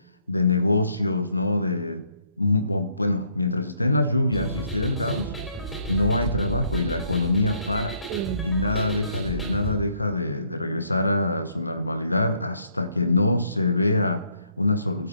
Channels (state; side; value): inverted; both; correlation -0.69